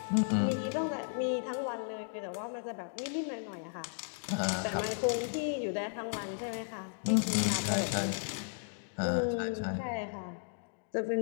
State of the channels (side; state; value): right; silent; digital silence